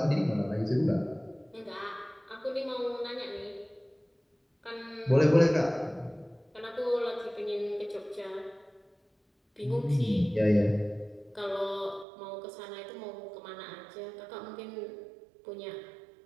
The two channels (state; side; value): drops out; left; at 12.1 s